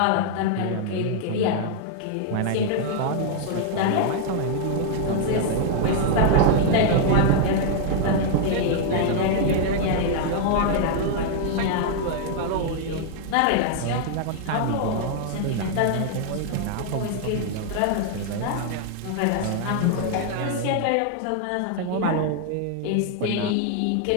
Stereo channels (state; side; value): different; both; correlation 0.00